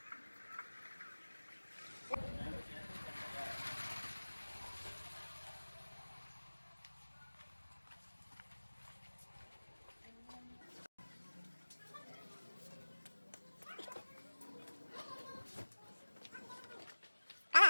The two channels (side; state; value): both; inverted; correlation -1.00